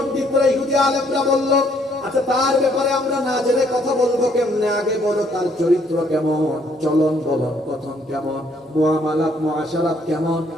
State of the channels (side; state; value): both; normal; correlation 0.66